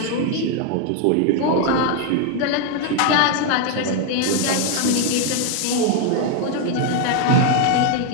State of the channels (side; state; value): both; different; correlation 0.01